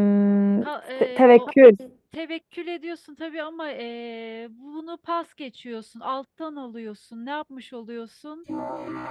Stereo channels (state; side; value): identical; both; correlation 1.00